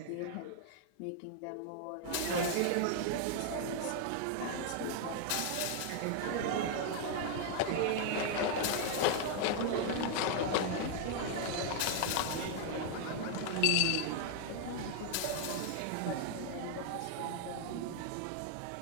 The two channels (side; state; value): both; different; correlation 0.00